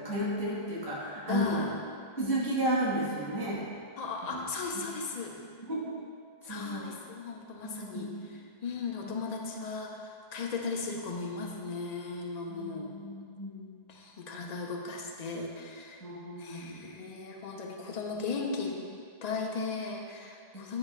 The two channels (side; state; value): right; late; 1.9 ms